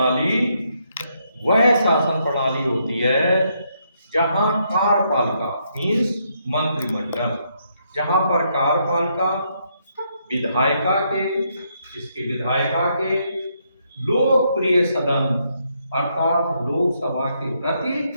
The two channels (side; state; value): both; inverted; correlation -0.75